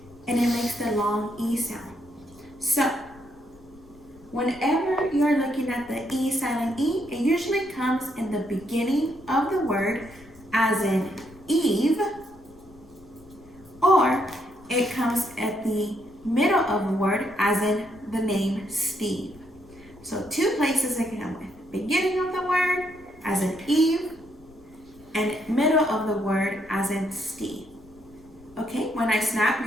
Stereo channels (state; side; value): noise; left; rumble, 25 dB below the sound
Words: and it makes the long E sound. So, whenever you're looking at the E silent E, it usually comes in the beginning of the word, as in Eve, or it comes at the middle of the word, as in the name Steve. So 2 places it can come with: beginning of the word, as in Eve, and middle of the word, as in Steve. Okay, when I snap,